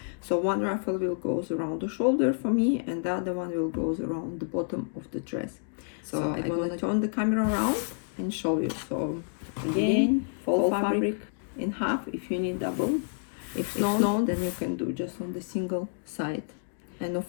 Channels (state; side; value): silent; right; digital silence